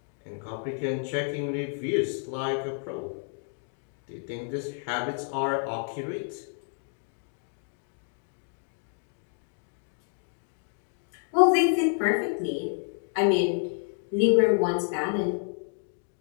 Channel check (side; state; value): right; silent; 58 dB below the other